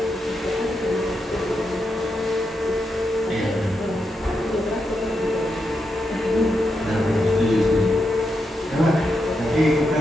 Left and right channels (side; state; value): both; normal; correlation 0.85